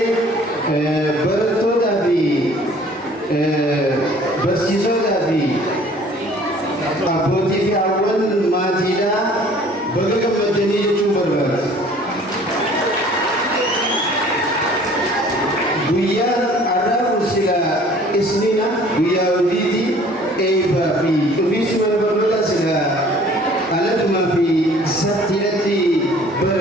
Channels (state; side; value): normal; both; correlation 0.52